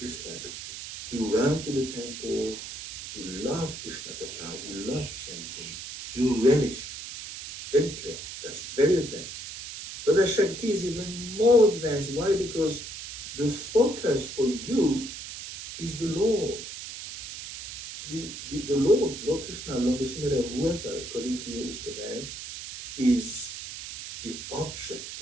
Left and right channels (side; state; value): right; noise; hiss, 9 dB below the sound